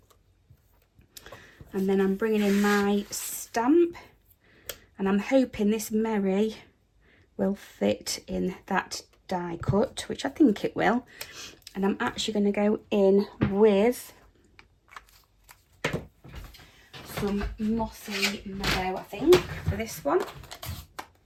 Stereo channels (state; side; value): identical; both; correlation 1.00